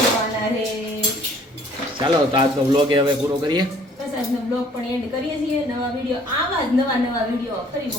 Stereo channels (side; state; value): both; normal; correlation 0.57